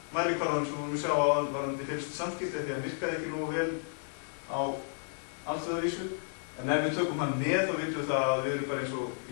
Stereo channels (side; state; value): right; silent; 56 dB below the other